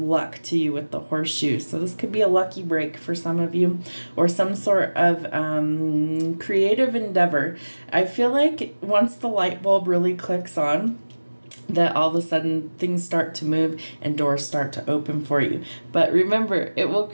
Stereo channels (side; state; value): both; inverted; correlation -1.00